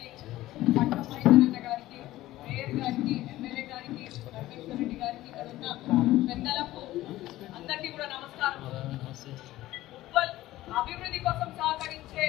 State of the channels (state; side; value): quieter; right; 16.0 dB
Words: పట్నం మైదరన్న గారికి, మేయర్ గారికి, ఎమ్మెల్యే గారికి, రమేశ్వర్ రెడ్డి గారికి, ఇక్కడ ఉన్న పెద్దలకు అందరికీ కూడా నమస్కారం. ఉప్పల్ అభివృద్ధి కోసం సహకరించే